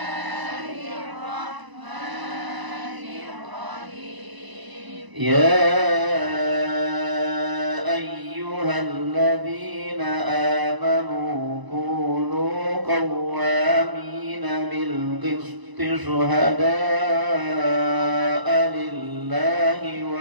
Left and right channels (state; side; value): late; left; 1.0 ms